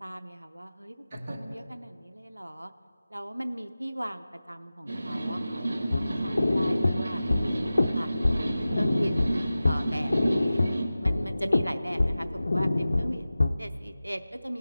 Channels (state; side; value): inverted; both; correlation -0.96